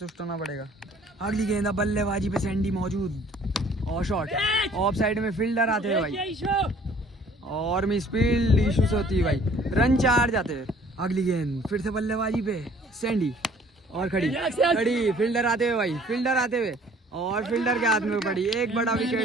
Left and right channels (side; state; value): both; normal; correlation 0.55